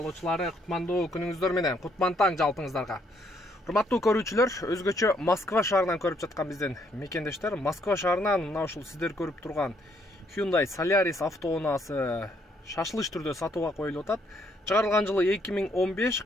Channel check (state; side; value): normal; both; correlation 0.70